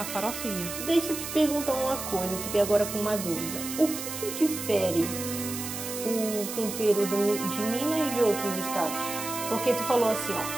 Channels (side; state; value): right; noise; hiss, 7 dB below the sound